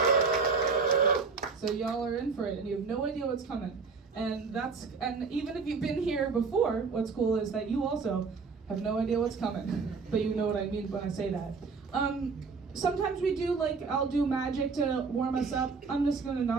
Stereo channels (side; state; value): left; quieter; 4.8 dB